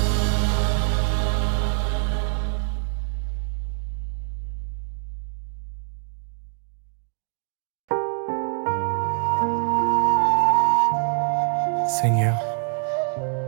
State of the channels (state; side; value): silent; left; 62 dB below the other